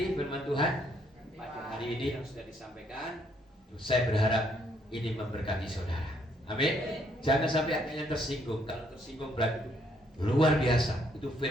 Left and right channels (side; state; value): both; normal; correlation 0.69